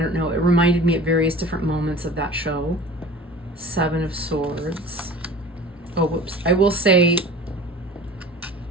know, it reminded me at various different moments of that show. Seven of Swords. Oh, whoops. I will say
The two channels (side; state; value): both; normal; correlation 0.41